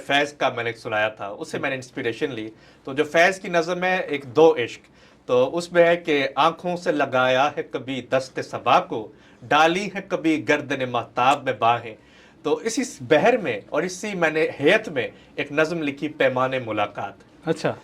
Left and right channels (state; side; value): identical; both; correlation 1.00